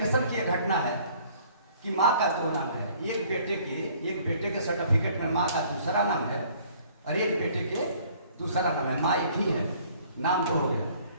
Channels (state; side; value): inverted; both; correlation -0.57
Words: की एक घटना है कि माँ का 2 नाम है। एक बेटे के सर्टिफिकेट में माँ का दूसरा नाम है, और एक बेटे के दूसरा नाम है। माँ एक ही है, नाम 2 हो गया।